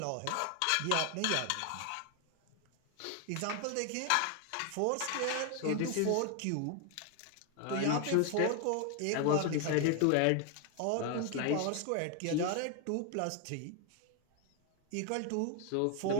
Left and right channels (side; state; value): both; different; correlation 0.01